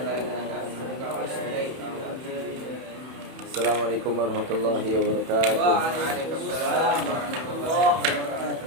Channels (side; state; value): left; late; 31 ms